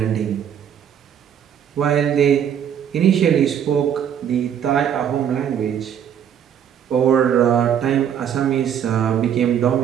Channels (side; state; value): left; quieter; 8.9 dB